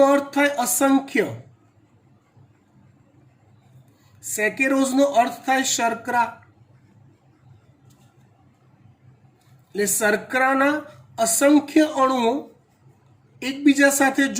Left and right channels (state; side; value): identical; both; correlation 1.00